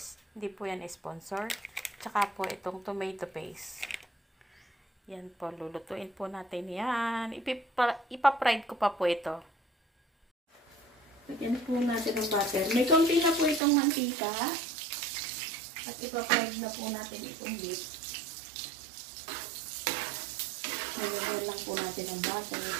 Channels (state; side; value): drops out; left; at 13.6 s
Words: Hindi po yan sponsor. Tsaka po itong tomato paste. Yan po, lulutuin po natin yan. Ipa-fried ko pa po ito. Lagyan po natin ng butter. May konti na po itong mantika. At ipa-fried na po natin itong beef. Lagyan lang po natin ng butter